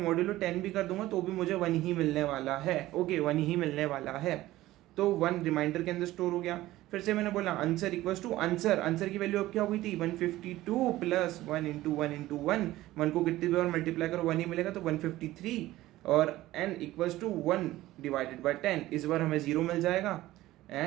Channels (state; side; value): quieter; left; 16.3 dB